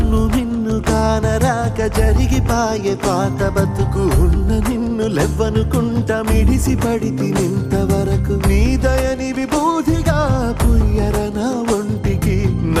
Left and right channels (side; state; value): both; identical; correlation 1.00